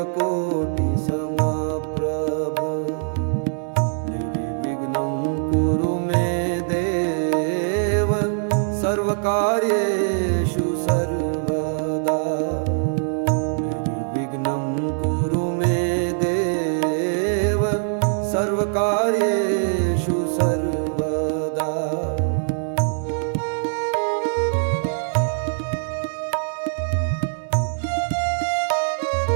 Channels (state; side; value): silent; left; digital silence